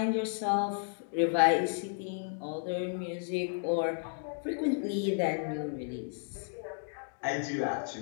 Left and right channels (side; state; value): right; silent; digital silence